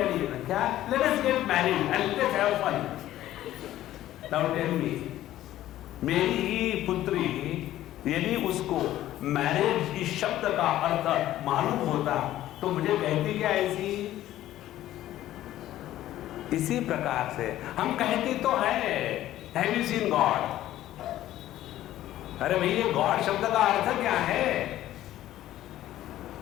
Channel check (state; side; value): quieter; right; 13.8 dB